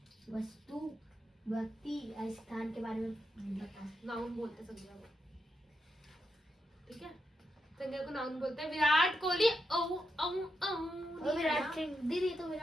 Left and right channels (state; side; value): normal; both; correlation 0.85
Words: वस्तु व्यक्ति या स्थान के बारे में बता। नाउन बोलते हैं संज्ञा को, ठीक है। संज्ञा को नाउन बोलते हैं। विराट कोहली ओ ओ ओ विराट सिंह दीदी, तो